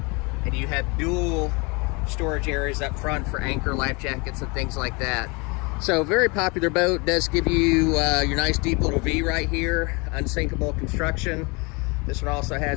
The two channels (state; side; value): quieter; right; 28.6 dB